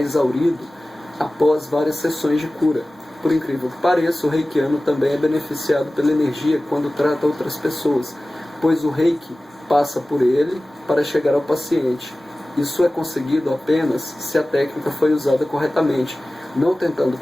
após várias sessões de cura. Por incrível que pareça, o reikiano também é beneficiado pela energia quando trata outras pessoas, pois o reiki passa por ele para chegar ao paciente. Isso é conseguido apenas se a técnica foi usada corretamente, não tentando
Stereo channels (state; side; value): normal; both; correlation 0.97